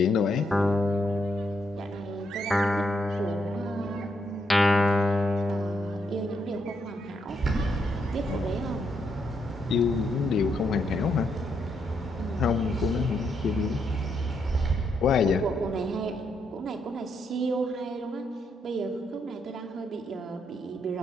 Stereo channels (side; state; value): both; normal; correlation 0.78